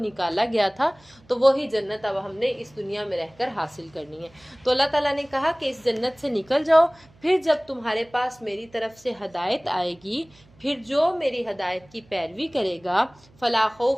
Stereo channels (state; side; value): noise; right; hum, 29 dB below the sound